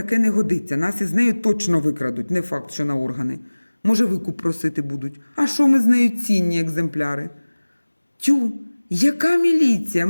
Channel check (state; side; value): inverted; both; correlation -1.00